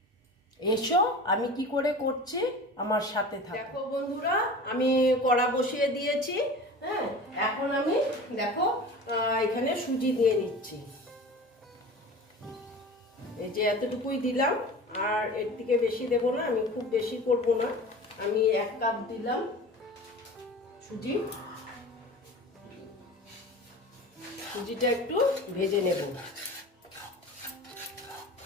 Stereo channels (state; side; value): normal; both; correlation 0.37